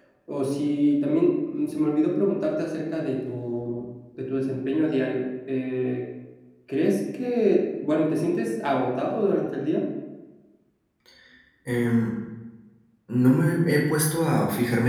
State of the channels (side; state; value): both; identical; correlation 1.00